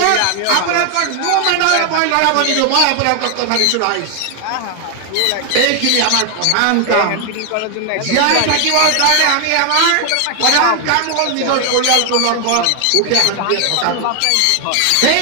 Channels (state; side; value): different; both; correlation 0.00